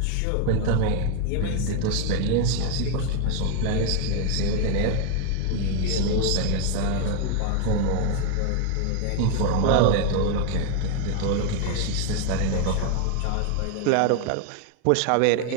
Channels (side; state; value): both; different; correlation 0.01